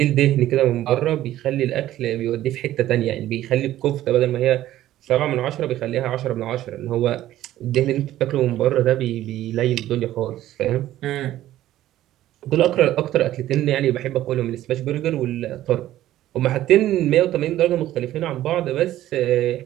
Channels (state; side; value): quieter; left; 13.8 dB